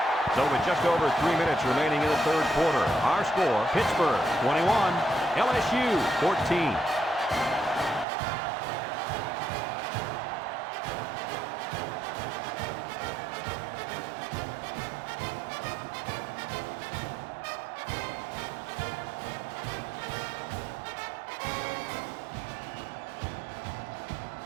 So with just over 3 minutes remaining in the third quarter, our score, Pittsburgh 21, LSU 14.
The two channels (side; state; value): left; drops out; at 8.1 s